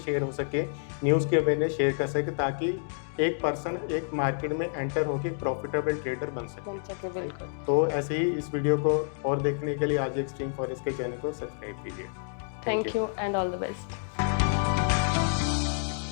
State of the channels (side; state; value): right; silent; digital silence